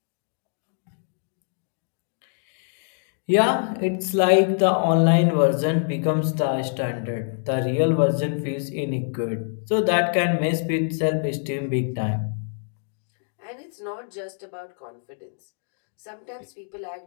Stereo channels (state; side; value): silent; right; digital silence